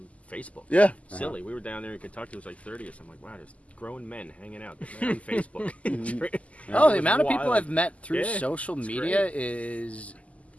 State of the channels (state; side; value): late; right; 0.068 ms